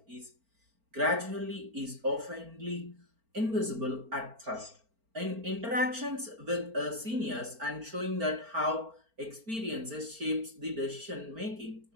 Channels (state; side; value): late; left; 4.4 ms